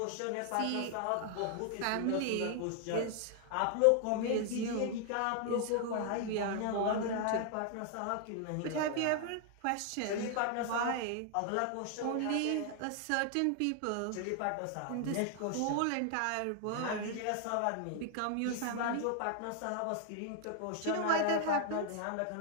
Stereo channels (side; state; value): both; different; correlation 0.00